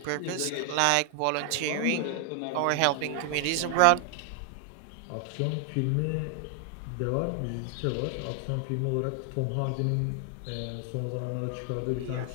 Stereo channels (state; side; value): different; both; correlation 0.00